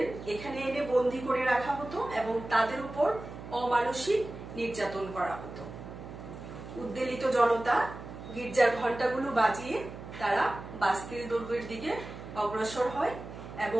এখানে এনে বন্দী করে রাখা হতো এবং তাদের উপর অমানসিক নির্যাতন করা হতো। উদ্বেলিত জনতা গির্জার ঘন্টাগুলো বাজিয়ে তারা বাস্তিল দুর্গের দিকে অগ্রসর হয়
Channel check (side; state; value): right; noise; hum, 12 dB below the sound